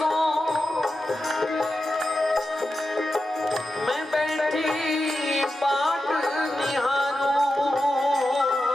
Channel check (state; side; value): normal; both; correlation 0.91